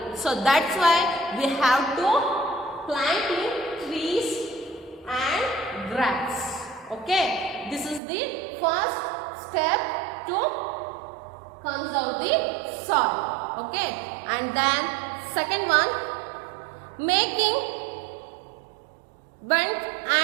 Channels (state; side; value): drops out; left; at 8.0 s